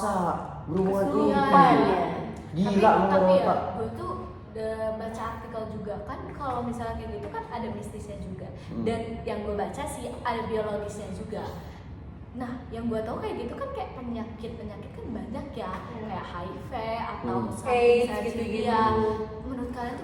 berhubungan Kesurupan gitu. ya. Gila tapi ya, Pak. gue tuh udah baca artikel juga kan kalau misalnya kayak gitu kan ada mistisnya juga. Dan yang gue baca sih ada biologisnya juga. Nah, yang gue tahu kayak gitu kan kayak penyakit kan banyak ya, kayak HIV atau AIDS misalnya gitu-gitu. ya. Menurut kalian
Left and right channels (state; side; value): identical; both; correlation 1.00